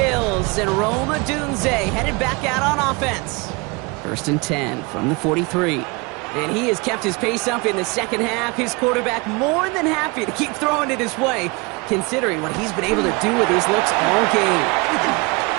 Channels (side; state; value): left; quieter; 27.3 dB